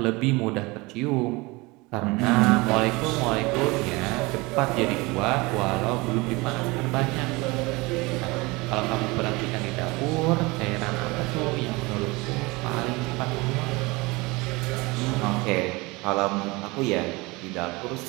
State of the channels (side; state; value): left; quieter; 24.0 dB